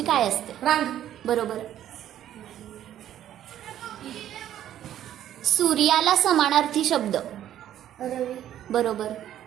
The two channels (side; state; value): left; quieter; 11.5 dB